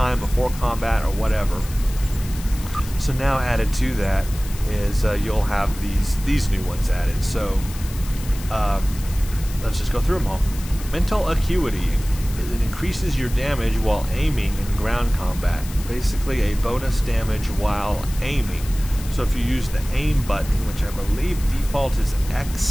before combat or whatever. So now added to that is you'll have these new ones added. So let's just go through them all. Mental Acuity. It increases your damage while aiming in ground combat. Basically a bonus damage while aiming. So if you use the aim button, which I believe default is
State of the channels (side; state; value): left; noise; hiss, 15 dB below the sound